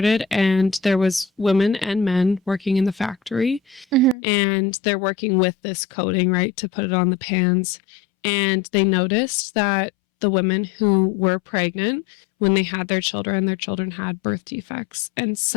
and there was women and men working in the factory. And they're working with this coating, right, to put it on the pans. And they noticed that the women who were pregnant, when they had their children had birth defects. And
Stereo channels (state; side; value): drops out; right; at 4.2 s